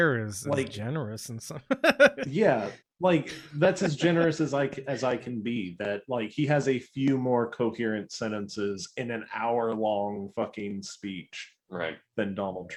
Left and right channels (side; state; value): both; identical; correlation 1.00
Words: is Like- generous and some. Yeah, like that's as generous as I can be. That like he has a few more coherent sentences in an hour-long fucking speech, right, than Donald